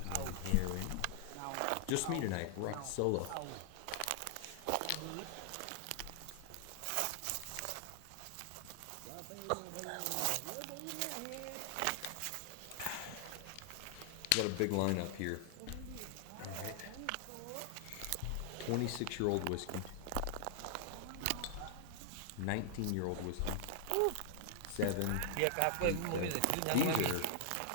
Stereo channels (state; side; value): different; both; correlation -0.01